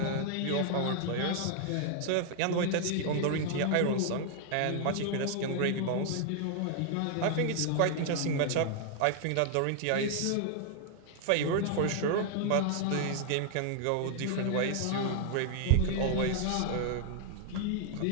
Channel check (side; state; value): both; different; correlation -0.01